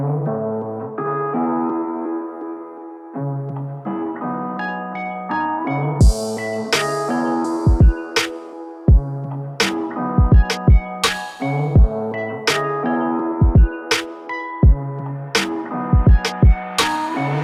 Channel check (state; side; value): identical; both; correlation 1.00